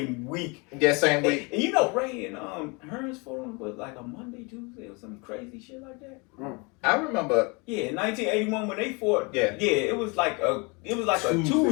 week. Yeah, same week. And you know Ray and Hearns fought on was like a Monday, Tuesday, or some crazy shit like that. I remember. Yeah, in 1981 when they fought. Yeah, it was like a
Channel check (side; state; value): right; quieter; 29.7 dB